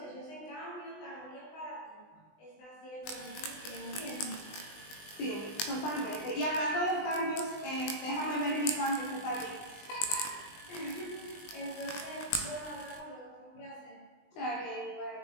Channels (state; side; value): late; right; 20 ms